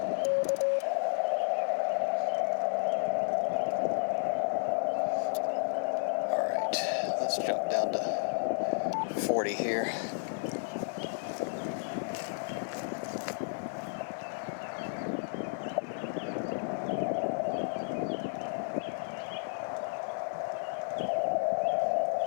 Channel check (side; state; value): right; silent; 56 dB below the other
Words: Let's jump down to 40 here.